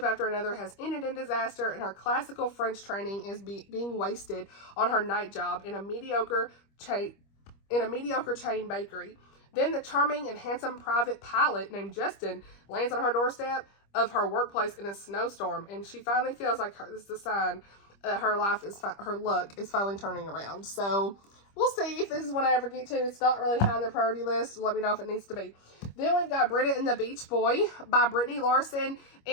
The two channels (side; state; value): right; late; 25 ms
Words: after another has ended in disaster, and her classical French training is being wasted on her night job in a mediocre chain bakery. Then the charming and handsome private pilot named Justin lands on her doorstep of her workplace in a snowstorm, and she finally feels like this is a sign that her luck is finally turning around. So we'll see if this is one I ever get to. It's not really high on the priority list. Let me know if it needs to be. Then we've got Britta and the Beach Boy by Brittany Larson.